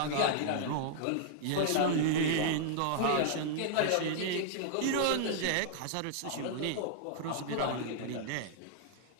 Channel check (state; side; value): different; both; correlation -0.01